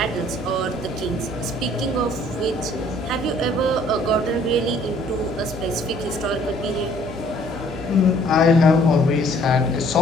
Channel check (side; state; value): both; normal; correlation 0.59